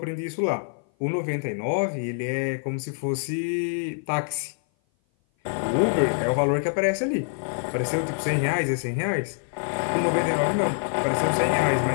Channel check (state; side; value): silent; right; 56 dB below the other